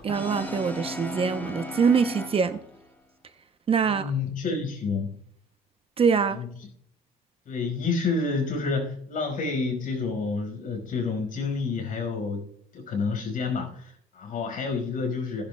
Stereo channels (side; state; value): both; normal; correlation 0.52